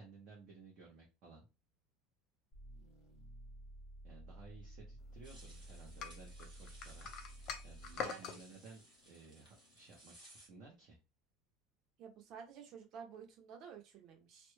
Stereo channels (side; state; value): both; normal; correlation 0.42